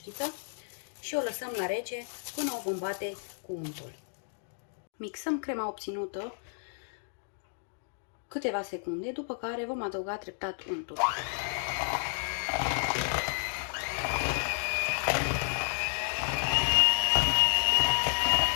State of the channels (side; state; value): right; silent; digital silence